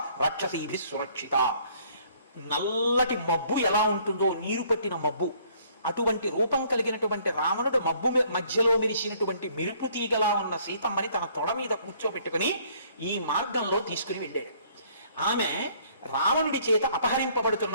రాక్షసీభిః సురక్షిత. నల్లటి మబ్బు ఎలా ఉంటుందో, నీరు పట్టిన మబ్బు, అటువంటి రూపం కలిగినటువంటి రావణుడు మబ్బు మధ్యలో మెరిసినటువంటి మెరుపు తీగలా ఉన్న సీతమ్మని తన తొడ మీద కూర్చోబెట్టుకుని ఈ మార్గంలో తీసుకుని వెళ్ళాడు. ఆమె రావణుడి చేత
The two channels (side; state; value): both; inverted; correlation -0.61